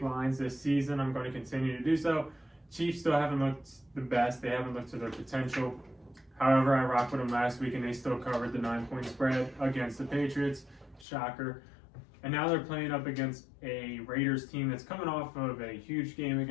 lines this season. I'm going to continue to do so. Chiefs still haven't looked the best. They haven't looked to their potential. However, I rocked with them last week, and they still covered the 9-point spread against the Patriots. Shocker. And now they're playing up against a Raiders team that's coming off of a huge game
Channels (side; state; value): right; drops out; at 11.1 s